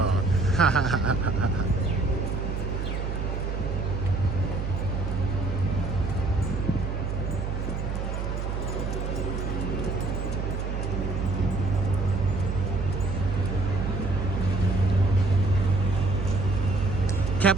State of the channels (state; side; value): noise; right; hum, 3 dB below the sound